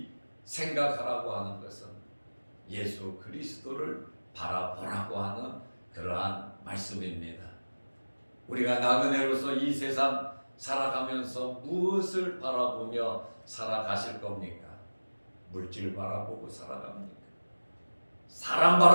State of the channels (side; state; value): both; inverted; correlation -1.00